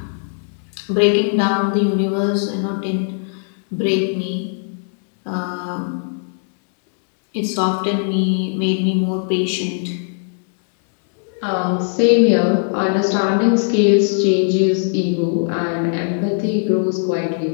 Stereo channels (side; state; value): right; silent; 66 dB below the other